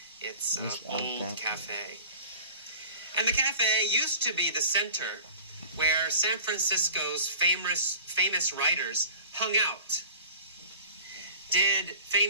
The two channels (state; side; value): inverted; both; correlation -0.41